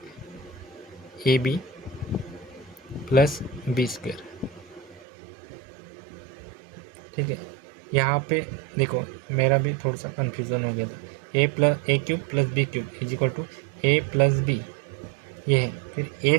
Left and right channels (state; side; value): drops out; left; at 5.1 s